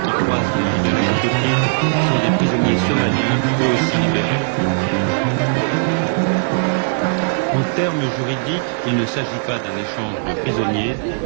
qui croisent les libérés éthiopiens sont des prisonniers somaliens, eux aussi libérés. En termes juridiques, il ne s'agit pas d'un échange de prisonniers,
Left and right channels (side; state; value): left; silent; digital silence